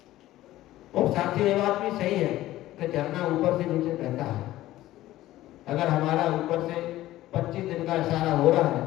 और साथ ही ये बात भी सही है कि झरना ऊपर से नीचे बहता है। अगर हमारा ऊपर से 25 दिन का इशारा हो रहा है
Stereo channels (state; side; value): quieter; right; 15.3 dB